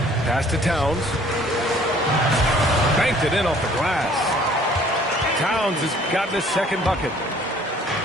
Pass to Towns. Banked it in off the glass. Towns has gotten his second bucket.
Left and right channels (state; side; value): normal; both; correlation 0.56